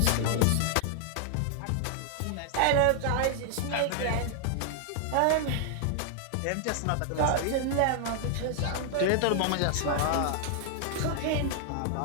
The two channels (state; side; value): different; both; correlation 0.00